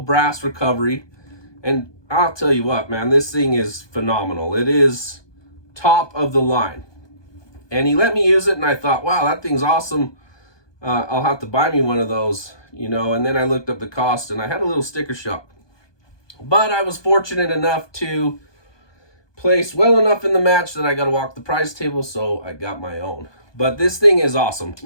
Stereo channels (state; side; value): late; right; 1.2 ms